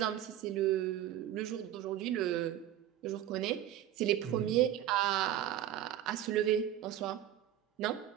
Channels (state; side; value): quieter; left; 11.8 dB